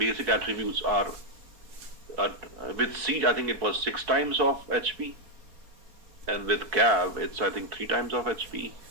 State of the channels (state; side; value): late; left; 4.3 ms